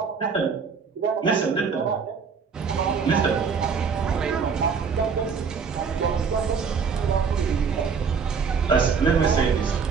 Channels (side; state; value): left; quieter; 5.8 dB